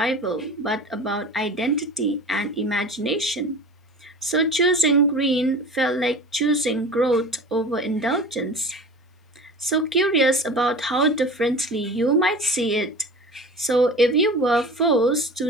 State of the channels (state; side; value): normal; both; correlation 0.37